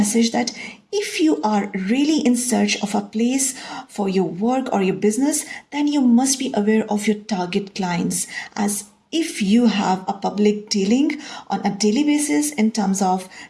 that if you are really in search of a place for your work or your business, then you must be aware of your target clients, as if you have a public dealing on a daily basis in terms of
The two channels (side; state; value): both; identical; correlation 1.00